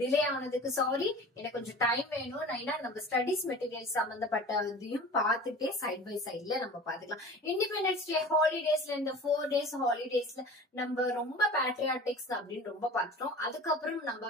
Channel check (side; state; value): both; normal; correlation 0.39